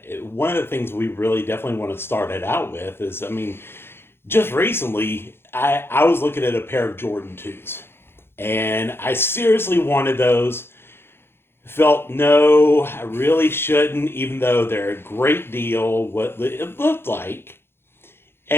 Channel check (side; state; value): right; late; 0.11 ms